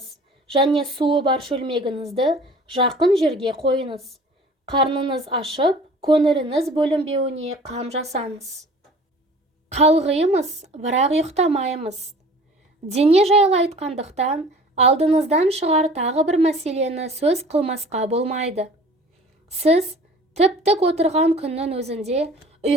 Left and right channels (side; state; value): both; normal; correlation 0.47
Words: және суы бар шөлмегіңізді жақын жерге қойыңыз. Қарныңыз ашып, көңіліңіз бөлінбеуіне қам жасаңыз. Қалғимыз, бірақ ұйықтамаймыз. Дене жайлы айтқандықтан, алдыңыздан шығар тағы бір мәселені сөз қылмасқа болмайды. Сіз тіп-тік отырған күннің өзінде